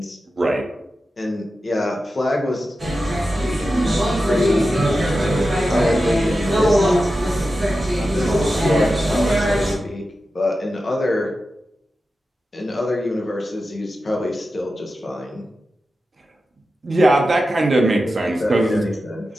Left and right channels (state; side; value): normal; both; correlation 0.92